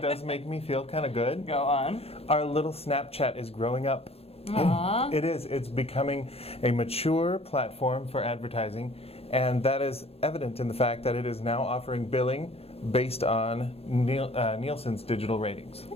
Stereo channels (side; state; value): right; late; 0.29 ms